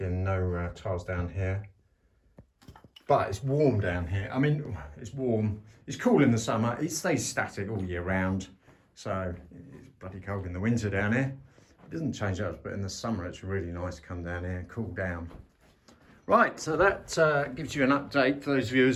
no tiles down here. But it's warm down here. I mean, it's warm. It's cool in the summer. It stays static all year round. So it's bloody cold in the winter down here. It doesn't change up, but in the summer it's really nice to come down here and cool down. Right, so that gives you an update for those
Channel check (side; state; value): both; identical; correlation 1.00